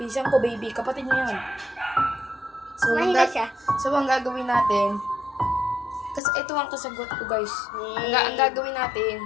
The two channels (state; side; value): drops out; right; at 6.2 s